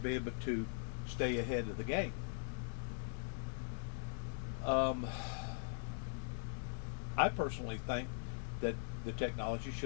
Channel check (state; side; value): silent; right; digital silence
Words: able to stay ahead of the game. I personally think that the technology